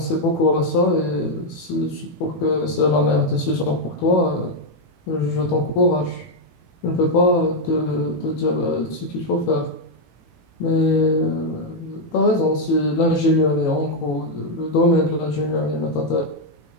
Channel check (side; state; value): right; late; 18 ms